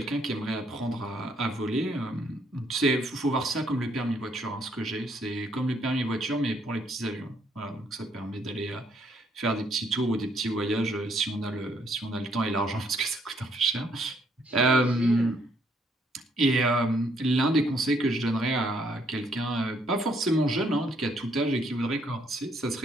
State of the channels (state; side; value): normal; both; correlation 0.69